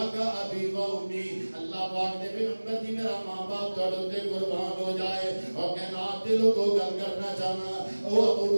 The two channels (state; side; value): inverted; both; correlation -1.00